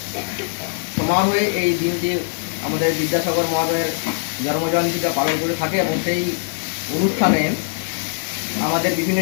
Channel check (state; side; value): silent; right; 57 dB below the other